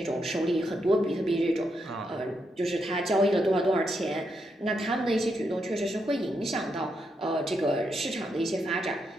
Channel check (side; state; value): both; normal; correlation 0.81